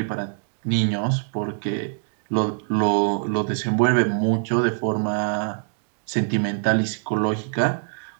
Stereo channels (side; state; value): left; silent; 63 dB below the other